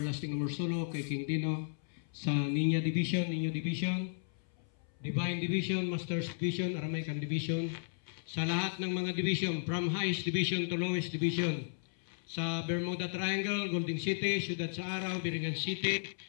Amorsolo, kay King Dino, sa Niño Division, Divine Division, Masters Division, Aramaican Division, sa lahat ng mga division, from highest division to lowest division, sa Bermuda Triangle, Golden City, Ciudad sa Araw, Biringan City,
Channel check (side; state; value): right; silent; 55 dB below the other